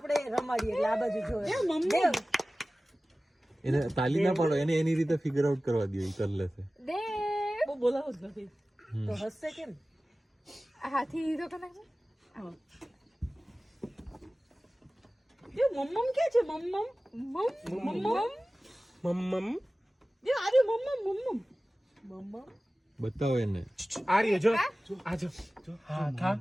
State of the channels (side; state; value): both; normal; correlation 0.97